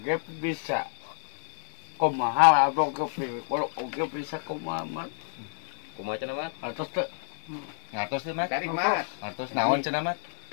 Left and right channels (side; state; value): right; silent; 58 dB below the other